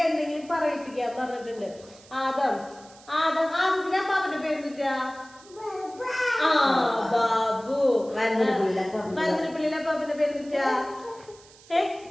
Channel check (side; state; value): right; noise; hiss, 24 dB below the sound